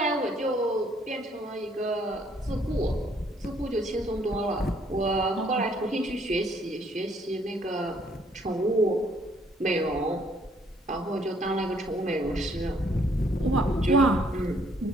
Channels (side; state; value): both; normal; correlation 0.65